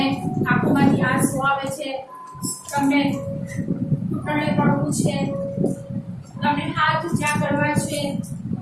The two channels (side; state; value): both; identical; correlation 1.00